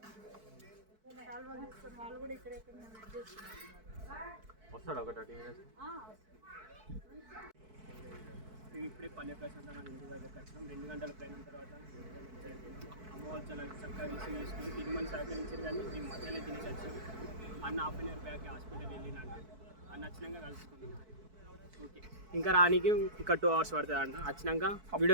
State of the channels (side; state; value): left; late; 4.6 ms